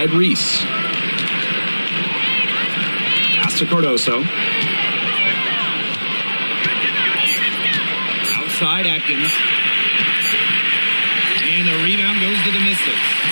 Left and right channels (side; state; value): both; inverted; correlation -1.00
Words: Reese. Pass to Cardoso. Outside Atkins. And the rebound goes to the Mystics.